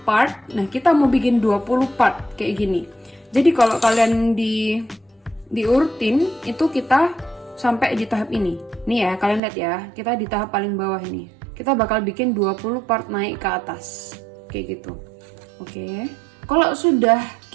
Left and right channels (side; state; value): left; drops out; at 9.4 s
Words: part. Nah, kita mau bikin 20 part kayak gini. Jadi kalau kalian diurutin itu kita sampai di tahap ini. Nih ya, kalian lihat ya. Kita di tahap paling bawah ini. Kita bakal bikin 20 part naik ke atas. Kayak gitu. Oke. Kalau sudah